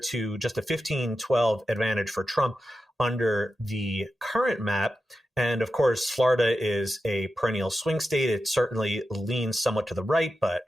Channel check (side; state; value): both; normal; correlation 0.91